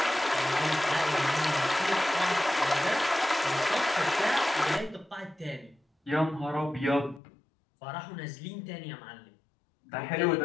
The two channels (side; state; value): right; drops out; at 7.2 s